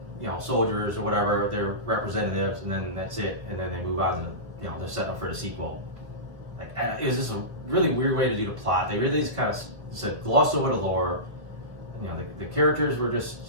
you know, soldiers or whatever, their representatives, and then that's it. And then they move on to, you know, they're setting up for the sequel. Like, it was just a really weird way to do the plot. They really just kind of said gloss over the lore. You know, the characters were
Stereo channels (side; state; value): left; late; 1.7 ms